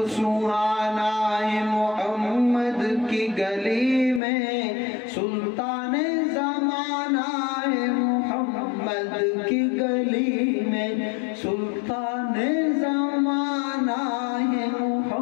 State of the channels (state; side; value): drops out; right; at 4.2 s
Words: سہانا ہے محمد کی گلی میں، سلطان زمانہ ہے محمد کی گلی میں، سلطان زمانہ ہے